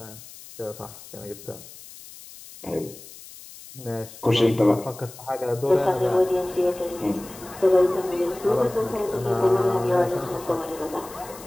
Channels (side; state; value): left; noise; hiss, 17 dB below the sound